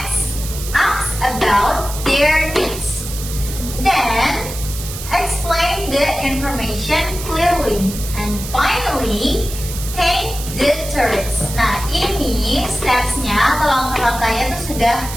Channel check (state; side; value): noise; right; hiss, 10 dB below the sound